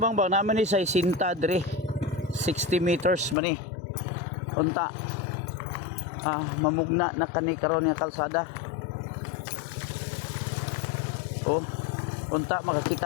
naman ni sa Sinta dre 60 meters mani unta mamugna na kani karon nga kalsada unta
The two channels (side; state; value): right; drops out; at 3.4 s